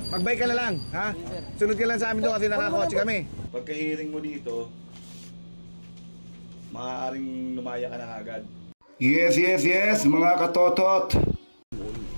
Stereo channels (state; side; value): inverted; both; correlation -1.00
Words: Magbike ka na lang, ha? Sunod ka lang sa amin doon kasi nakakotse kami. Pagka-hearing mo dito, maaaring lumaya ka na agad. Yes, mga katotot.